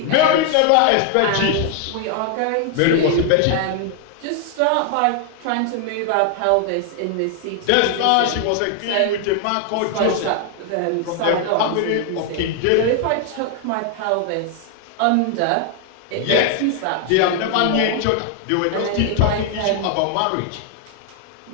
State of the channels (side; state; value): both; different; correlation 0.00